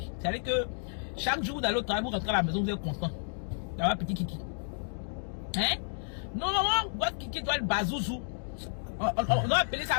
C'est-à-dire que chaque jour vous allez au travail, vous rentrez à la maison, vous êtes content d'avoir un petit kiki. Hein? Normalement, votre kiki doit être bazouzou. On doit appeler ça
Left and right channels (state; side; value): silent; right; digital silence